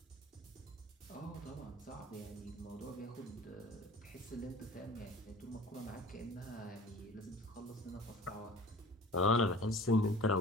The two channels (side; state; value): both; normal; correlation 0.44